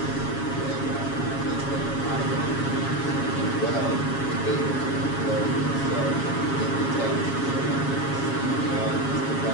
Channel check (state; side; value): late; right; 7.2 ms